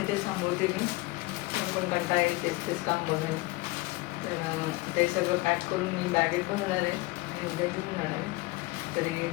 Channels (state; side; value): quieter; right; 21.5 dB